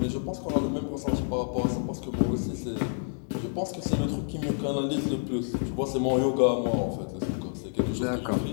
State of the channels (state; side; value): silent; right; 59 dB below the other